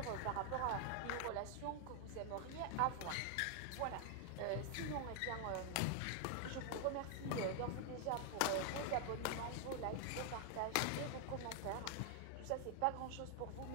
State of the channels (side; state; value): both; different; correlation 0.00